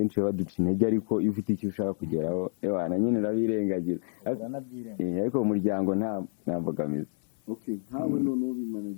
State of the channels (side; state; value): right; silent; digital silence